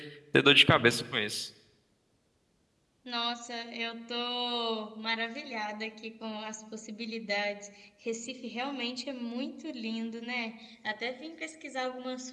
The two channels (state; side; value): identical; both; correlation 1.00